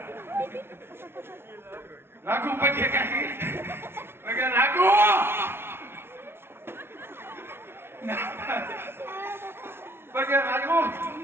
લાગુ પગે કાકી પગે લાગુ પગે લાગુ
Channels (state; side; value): late; left; 0.12 ms